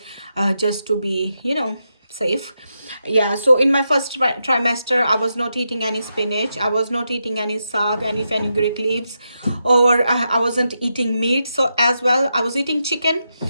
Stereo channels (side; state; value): both; inverted; correlation -0.85